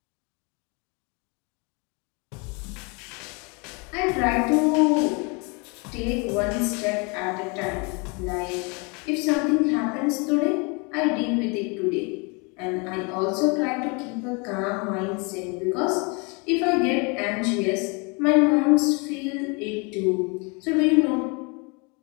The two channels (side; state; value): right; quieter; 31.5 dB